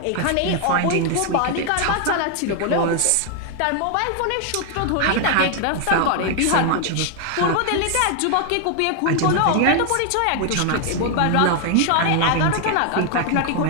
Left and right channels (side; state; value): both; different; correlation 0.00